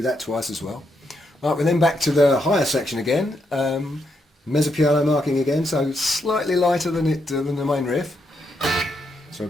that twice as well. Right, we're then back to the higher section again, mezzo piano marking again, so slightly lighter than the main riff. So we're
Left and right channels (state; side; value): normal; both; correlation 0.79